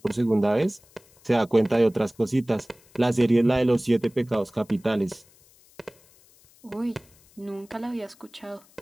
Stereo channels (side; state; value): left; noise; hiss, 29 dB below the sound